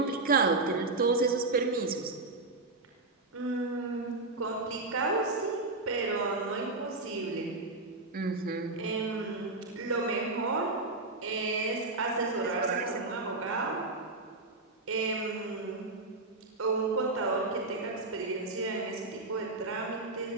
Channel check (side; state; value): left; quieter; 3.2 dB